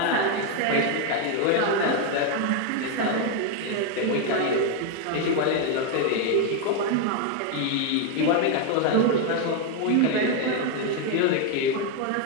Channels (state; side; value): different; both; correlation 0.01